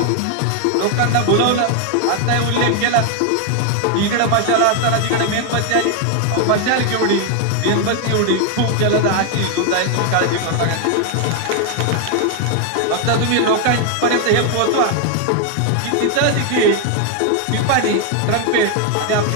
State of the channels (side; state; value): both; different; correlation 0.01